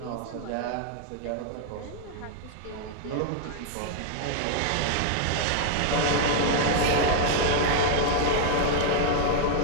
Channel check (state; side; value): different; both; correlation -0.01